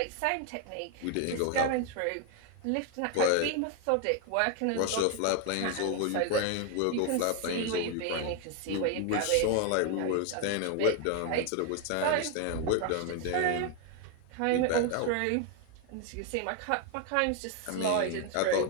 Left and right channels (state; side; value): different; both; correlation 0.01